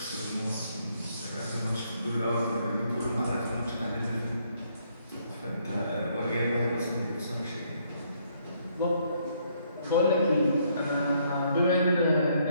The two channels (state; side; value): inverted; both; correlation -0.70